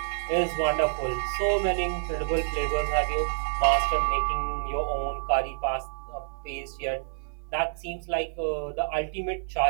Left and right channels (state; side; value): silent; left; 59 dB below the other